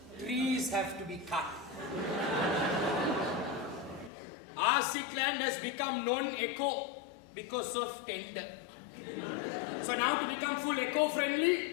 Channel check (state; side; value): drops out; right; at 4.1 s